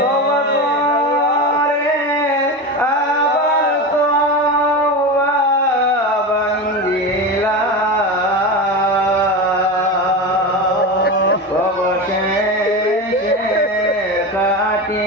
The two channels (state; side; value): normal; both; correlation 0.22